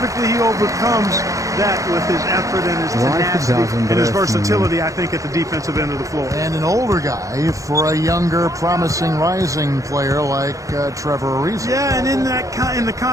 he overcomes that with his effort and his tenacity and his versatility, I think, at the defensive end of the floor. And an older guy for a younger, promising, rising player like Trevor Ariza. Yeah, and in the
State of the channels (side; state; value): left; late; 0.16 ms